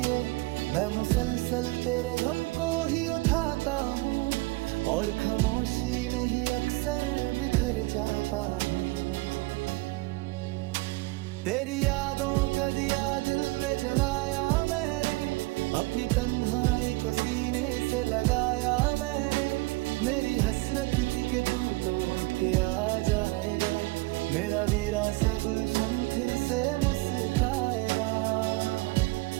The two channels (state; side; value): quieter; left; 22.4 dB